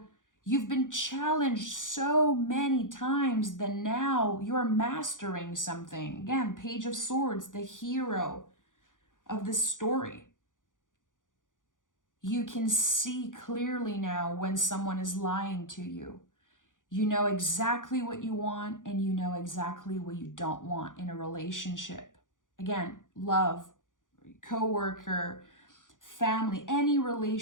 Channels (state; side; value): late; right; 0.88 ms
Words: you've been challenged so many times that now you're mastering something. Again, Page of Swords, the hero of this story. You can see clearly now when someone is lying to you. You know exactly what you want, and you know exactly what you don't want in a relationship. Again, love, coworker, family, any